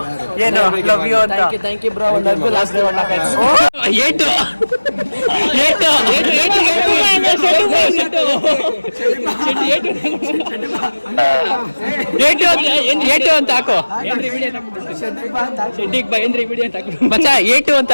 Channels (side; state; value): both; inverted; correlation -1.00